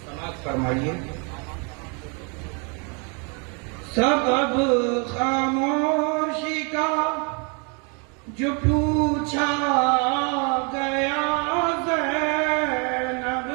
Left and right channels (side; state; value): left; quieter; 34.8 dB